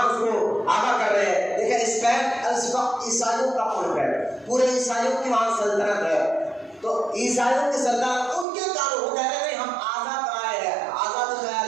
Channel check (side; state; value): left; drops out; at 8.5 s